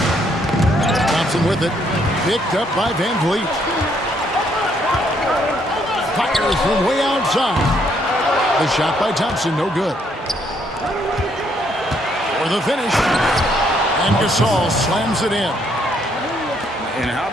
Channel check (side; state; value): both; normal; correlation 0.70